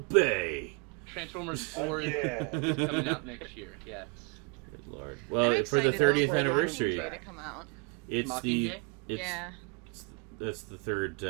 Transformers 4 is coming out next year. Yes. Good lord. Well, for the 30th anniversary. To come out. That's the third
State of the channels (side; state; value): left; quieter; 30.5 dB